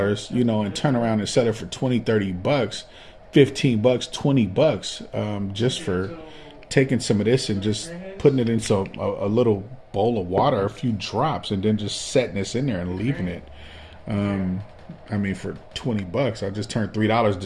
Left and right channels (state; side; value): identical; both; correlation 1.00